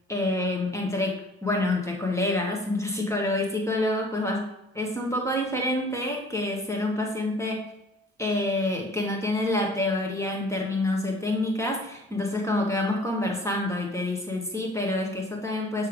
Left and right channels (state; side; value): normal; both; correlation 0.51